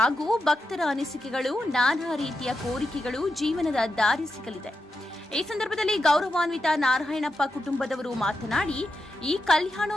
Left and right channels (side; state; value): both; normal; correlation 0.87